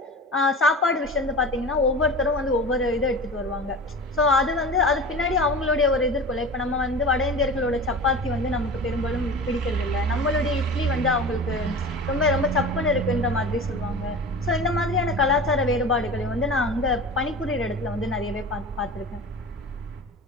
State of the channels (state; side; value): normal; both; correlation 0.34